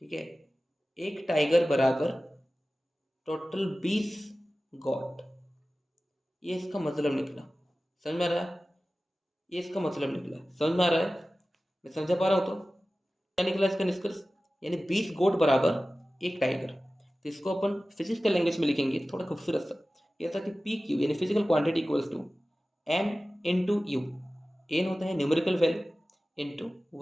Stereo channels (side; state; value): both; normal; correlation 0.96